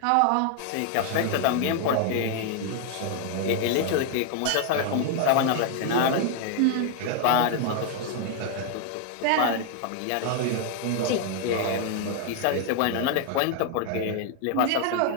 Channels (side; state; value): both; different; correlation 0.00